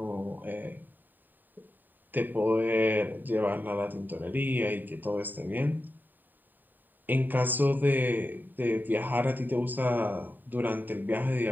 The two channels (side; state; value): left; late; 0.090 ms